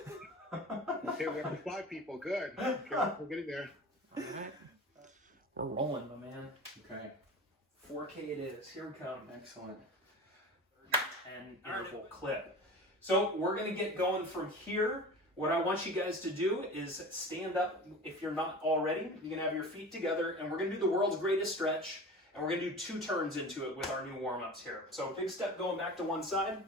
Okay, we have 5 people. Good. Okay, we're getting there. All right. We're rolling, my man. Okay. 4K it is. Here we come. Excellent. 10 interval clip. So we're going to get going from here. What I want you guys to do is stand up. If you're not already, you're going to have your feet together, and we're going to do the world's greatest stretch, and we're going to do 2 turns into it with our new warm-ups here. So big step going back to one side.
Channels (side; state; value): both; normal; correlation 0.35